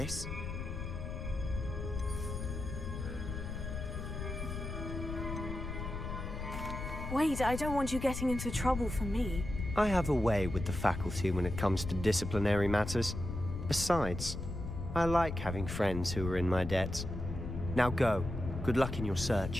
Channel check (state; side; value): noise; left; rumble, 6 dB below the sound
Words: Wait, I don't want you getting into trouble for me. I have a way with the faculty when it comes to disciplinary matters. Besides, I like having friends who are in my debt. Now go. Good luck in your